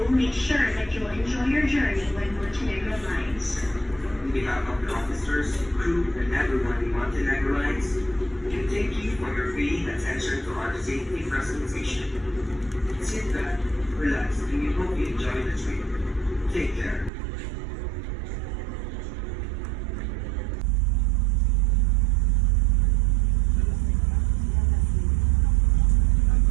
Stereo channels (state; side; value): drops out; left; at 17.1 s